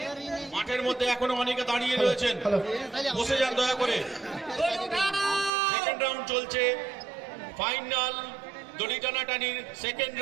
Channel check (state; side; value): drops out; left; at 5.5 s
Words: মাঠের মধ্যে এখনো অনেকে দাঁড়িয়ে রয়েছেন, বসে যান দয়া করে। সেকেন্ড রাউন্ড চলছে, ফাইনাল দড়ি টানাটানির সেকেন্ড